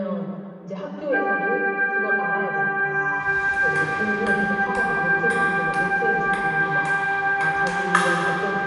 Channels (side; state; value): both; identical; correlation 1.00